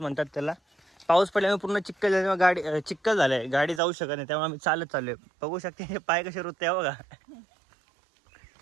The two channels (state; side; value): drops out; left; at 3.8 s